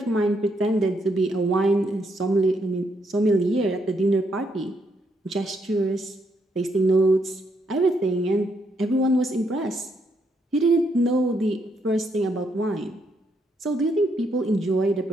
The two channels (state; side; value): normal; both; correlation 0.76